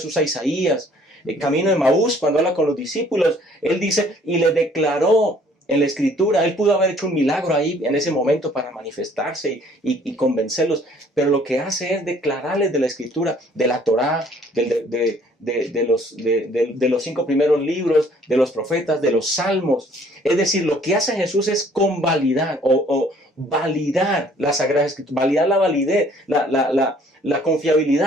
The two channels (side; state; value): both; normal; correlation 0.58